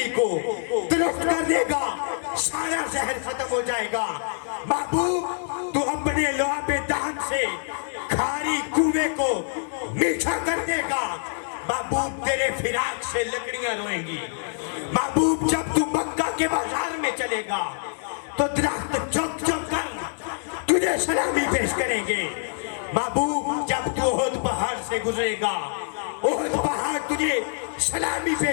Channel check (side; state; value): right; silent; 60 dB below the other